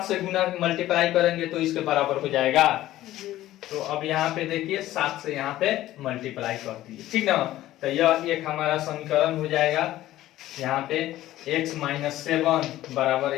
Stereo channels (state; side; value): quieter; right; 14.7 dB